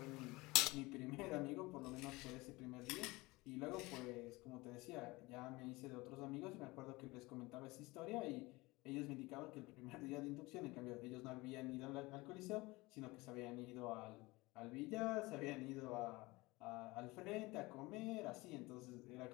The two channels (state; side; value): quieter; right; 22.2 dB